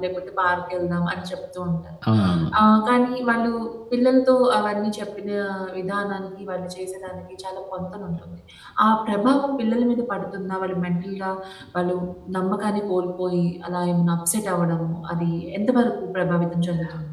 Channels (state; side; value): identical; both; correlation 1.00